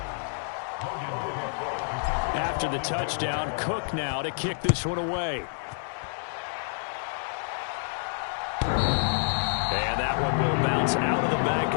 After the touchdown, Cook now to kick this one away. And that one will bounce out of the back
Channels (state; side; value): silent; right; digital silence